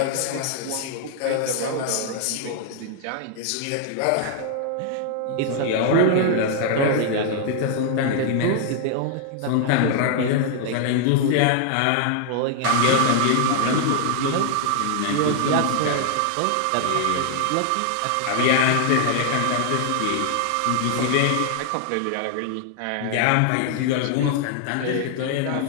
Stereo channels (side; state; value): both; different; correlation 0.00